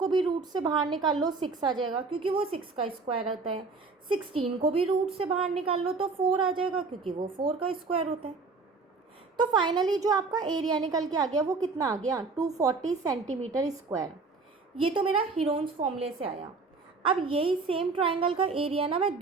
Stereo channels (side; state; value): left; quieter; 4.2 dB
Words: भी रूट से बाहर निकाल लो, 6 आ जाएगा क्योंकि वो 6 का स्क्वायर होता है। 16 को भी रूट से बाहर निकाल लो तो 4 आ जाएगा क्योंकि वो 4 का स्क्वायर होता है। तो फाइनली जो आपका एरिया निकल के आ गया वो कितना आ गया, 240 सेंटीमीटर स्क्वायर। ये तो मेरा हीरोन्स फॉर्मूले से आया। अब यही सेम ट्राइंगल का एरिया ना मैं